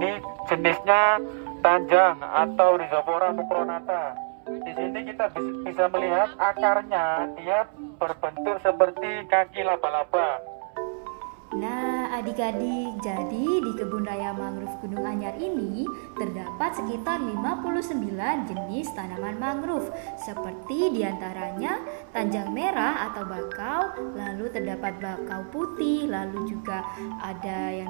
jenisnya tanjang atau Rhizopora mucronata. Di sini kita bisa melihat akarnya, dia berbentuk seperti kaki laba-laba. Nah, adik-adik, jadi di Kebun Raya Mangrove Gunung Anyar ini terdapat sekitar 59 jenis tanaman mangrove, seperti diantaranya tanjang merah atau bakau, lalu terdapat bakau putih, lalu juga ada yang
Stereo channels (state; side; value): silent; left; 60 dB below the other